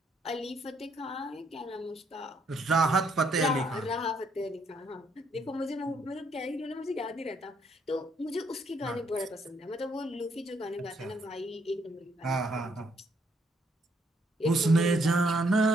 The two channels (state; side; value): normal; both; correlation 0.71